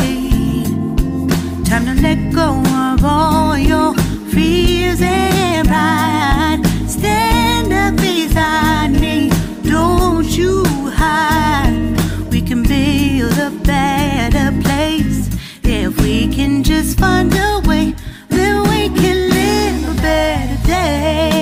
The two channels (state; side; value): identical; both; correlation 1.00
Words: Time to let go of all your fears and pride. Stand up beside me, don't you hide. We can build a better place. If we can just find a way, then we can live a better